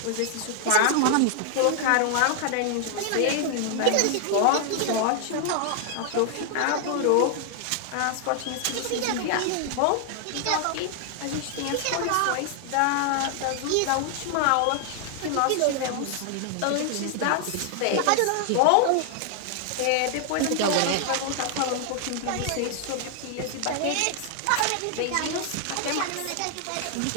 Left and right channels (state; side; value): different; both; correlation 0.00